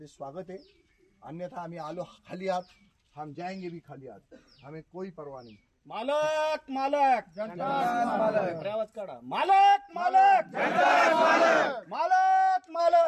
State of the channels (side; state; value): both; identical; correlation 1.00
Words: स्वागत आहे. अन्यथा आम्ही आलो खाली हात, हम जाएंगे भी खाली हात, हमें कोई परवाह नहीं. मालक मालक मालक आवाज काढा. मालक मालक मालक